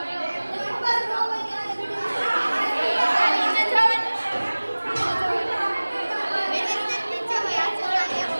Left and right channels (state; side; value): inverted; both; correlation -1.00